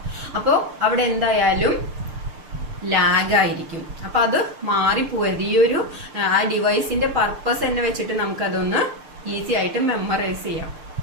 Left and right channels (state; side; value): late; left; 6.7 ms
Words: അപ്പോ അവിടെ എന്തായാലും ലാഗ് ആയിരിക്കും. അപ്പൊ അത് മാറിപ്പോകരുത്. ഈ ഒരു ആ ഡിവൈസിന്റെ പർപ്പസ് തന്നെ വെച്ചിട്ട് നമുക്കതൊന്ന് ഈസി ആയിട്ട് മെമ്മറൈസ് ചെയ്യാം.